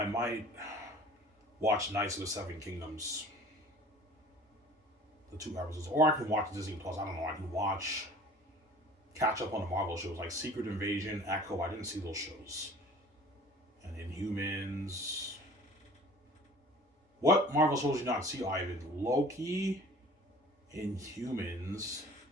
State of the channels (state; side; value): normal; both; correlation 0.47